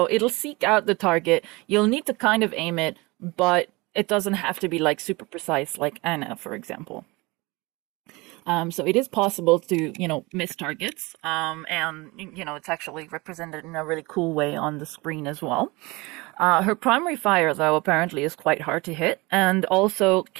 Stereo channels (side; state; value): left; quieter; 24.1 dB